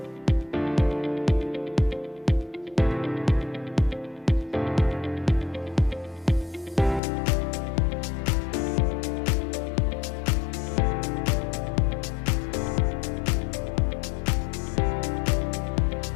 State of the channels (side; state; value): right; drops out; at 7.0 s